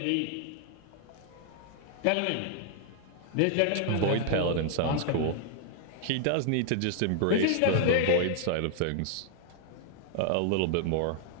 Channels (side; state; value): both; different; correlation 0.00